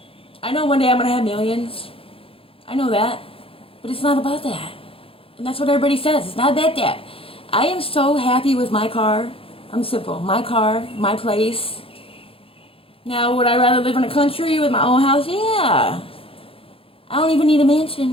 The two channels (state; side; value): late; right; 0.27 ms